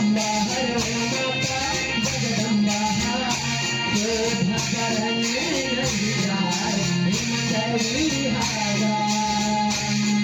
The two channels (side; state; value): both; identical; correlation 1.00